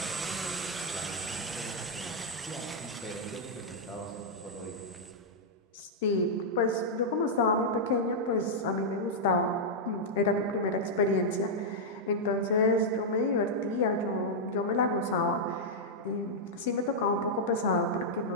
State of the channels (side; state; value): both; normal; correlation -0.06